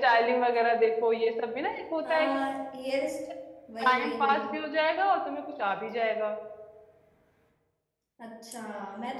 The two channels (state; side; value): identical; both; correlation 1.00